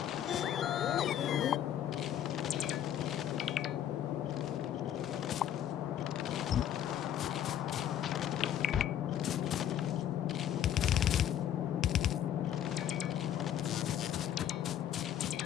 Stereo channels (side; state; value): right; quieter; 10.4 dB